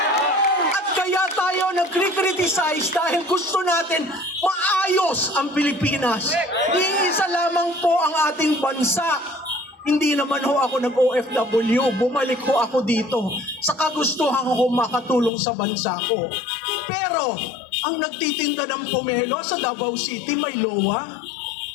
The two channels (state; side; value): drops out; right; at 15.3 s